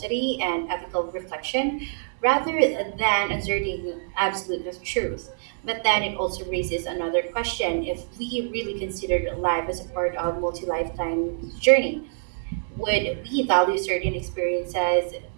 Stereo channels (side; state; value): left; silent; digital silence